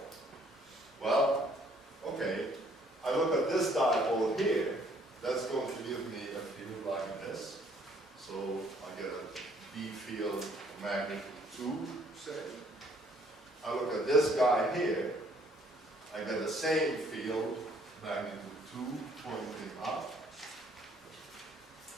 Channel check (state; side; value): normal; both; correlation 0.63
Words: Well, okay, I look at this dipole here, that's going to give me a field like this. So I get a B field magnitude 2, say. I look at this guy here, I get the same field, magnitude 2, pointing up.